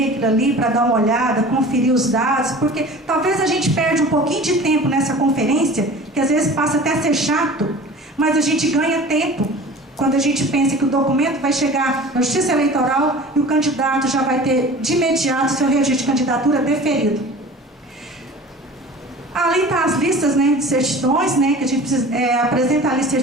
aquilo ali para dar uma olhada, conferir os dados, porque talvez a gente perde um pouquinho de tempo nessa conferência, que às vezes passa até a ser chato, mas a gente ganha tempo quando a gente pensa que o documento vai chegar na Justiça Eleitoral e o candidato já vai ter de imediato seu registro de candidatura deferido. Ali está as listas, né, de certidões, né, que a gente precisa apresentar ali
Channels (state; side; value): normal; both; correlation 0.41